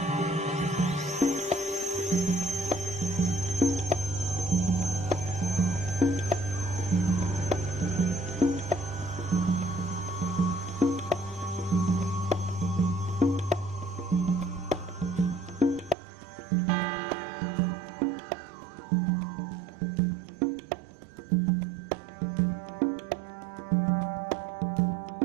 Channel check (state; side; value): drops out; left; at 16.0 s